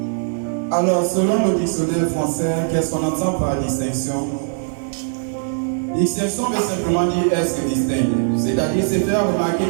Alors, selon le dictionnaire français, qu'est-ce qu'on entend par distinction? Distinction veut simplement dire être distinct, c'est-à-dire se faire remarquer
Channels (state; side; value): silent; left; digital silence